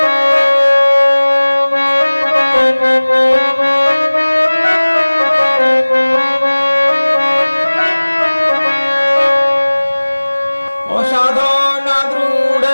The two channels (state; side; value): inverted; both; correlation -1.00